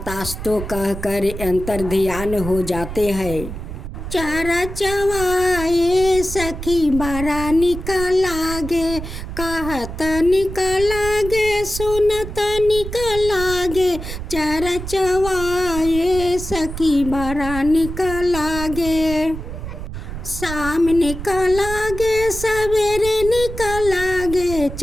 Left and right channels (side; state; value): right; noise; rumble, 8 dB below the sound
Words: कहकर अंतर ध्यान हो जाते हैं। चारा चवाए सखी बारा निकलागे, कहत निकलागे सुनत निकलागे। चारा चवाए सखी बारा निकलागे, शाम निकलागे सवेरे निकलागे।